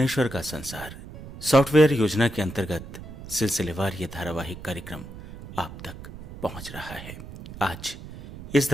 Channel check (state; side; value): noise; right; rumble, 13 dB below the sound